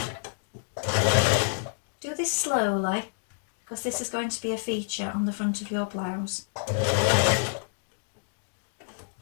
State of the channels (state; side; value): silent; right; digital silence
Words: Do this slowly because this is going to be a feature on the front of your blouse.